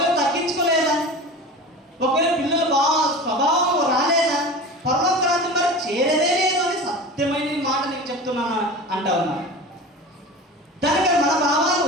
తగ్గించుకోలేదా, ఒకవేళ పిల్లలు బాగా స్వభావం రాలేదా, పరలోక రాజ్యం మరి చేరేదే లేదు అని సత్యమైన మాట నీకు చెప్తున్నాను అంటా ఉన్నాను. దానికి మన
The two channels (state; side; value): normal; both; correlation 0.33